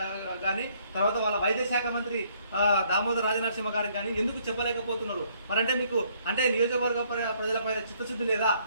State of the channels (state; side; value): inverted; both; correlation -0.66